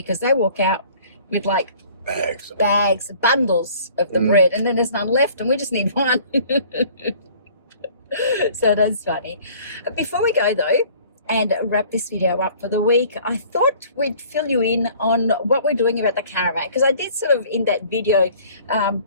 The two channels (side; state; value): both; inverted; correlation -0.52